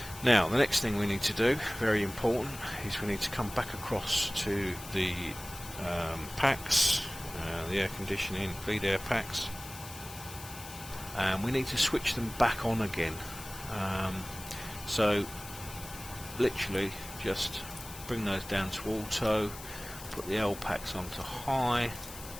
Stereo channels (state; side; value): noise; left; hiss, 14 dB below the sound